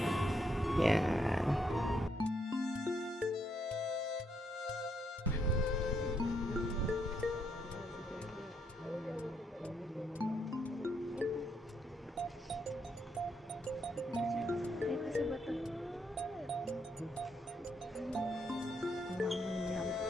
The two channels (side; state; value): both; normal; correlation 0.75